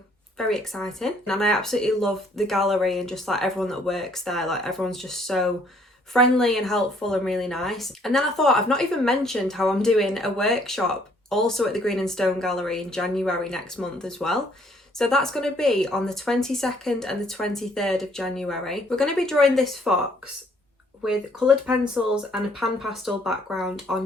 very exciting. And I absolutely love the gallery and just like everyone that works there. Like everyone's just so friendly and helpful and really nice. And then I thought, I've not even mentioned how I'm doing a workshop also at the Green and Stone Gallery in January next month as well. So that's going to be on the 22nd and the 23rd of January. We're going to be drawing this fox with coloured pencils and a pan pastel background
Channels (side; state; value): both; normal; correlation 0.64